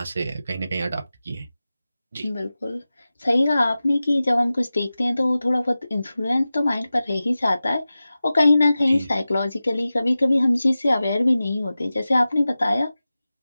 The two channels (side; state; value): both; inverted; correlation -0.95